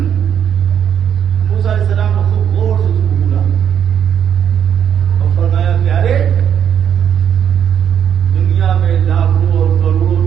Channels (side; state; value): left; quieter; 8.7 dB